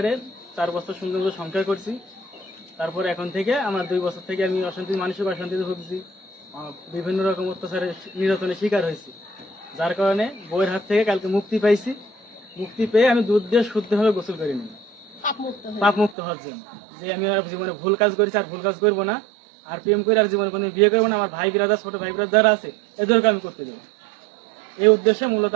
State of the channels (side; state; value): left; drops out; at 16.2 s